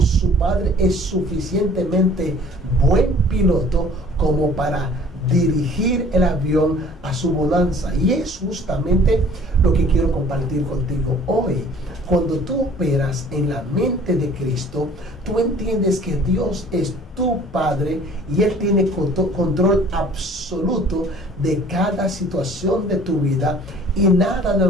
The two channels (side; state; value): both; normal; correlation 0.51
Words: su padre es suficientemente buen piloto como para dirigir el avión a su bonanza. Y es justamente lo que quiero compartir contigo hoy. Cuando tú operas en la mente de Cristo, tú entiendes que Dios es tu Padre y Él tiene control absoluto de cada situación de tu vida, y nada de